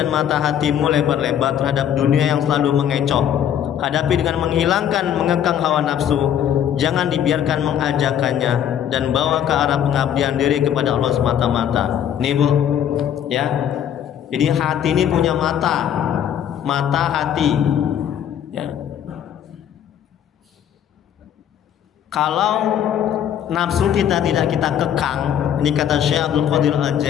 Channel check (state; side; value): quieter; right; 9.7 dB